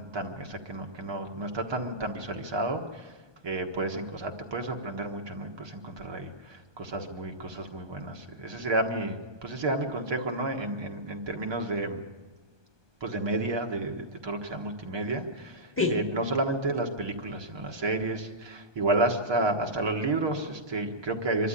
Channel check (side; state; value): left; late; 1.2 ms